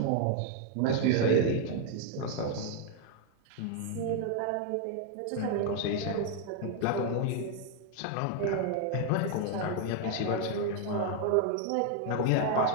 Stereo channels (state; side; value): different; both; correlation 0.00